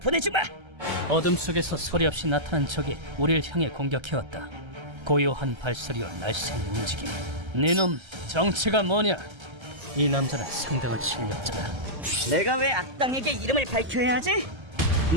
어둠 속에서 소리 없이 나타난 적이 우리를 향해 공격해왔다. 고요한 발소리와 날쌘 움직임. 네놈 정체가 뭐냐? 이 남자는 상당한 실력자다. 내가 왜 악당에게 이름을 밝혀야 하지?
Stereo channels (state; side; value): late; left; 1.3 ms